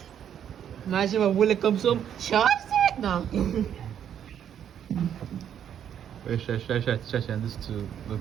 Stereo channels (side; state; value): left; quieter; 9.3 dB